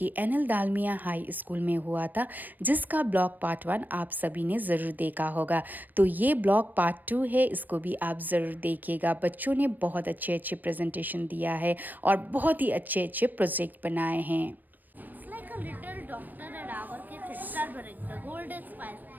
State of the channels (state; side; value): late; left; 0.088 ms